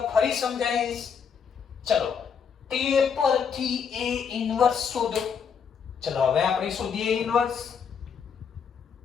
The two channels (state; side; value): quieter; right; 6.7 dB